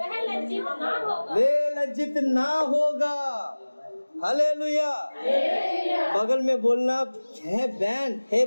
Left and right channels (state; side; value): inverted; both; correlation -1.00